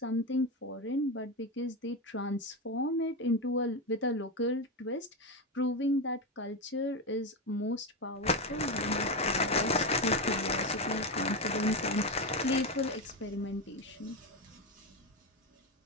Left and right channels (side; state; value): both; normal; correlation 0.13